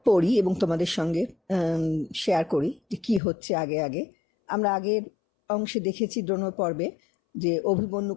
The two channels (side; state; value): right; drops out; at 3.2 s